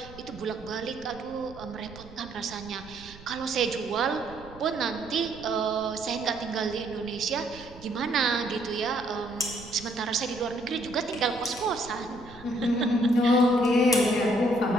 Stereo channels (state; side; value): noise; right; rumble, 18 dB below the sound